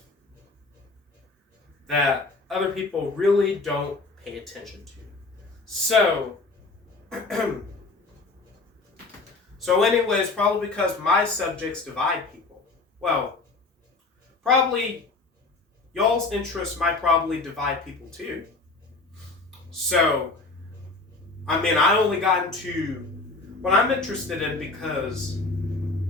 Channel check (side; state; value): right; quieter; 3.6 dB